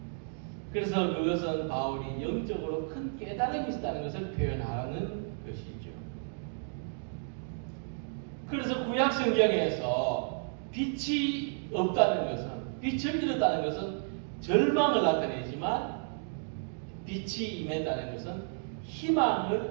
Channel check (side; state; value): left; silent; digital silence